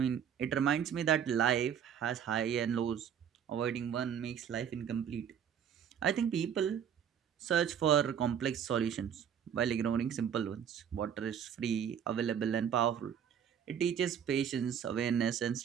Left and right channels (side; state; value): left; quieter; 8.4 dB